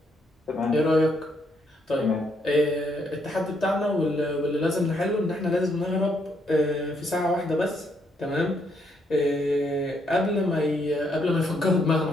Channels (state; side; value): normal; both; correlation 0.74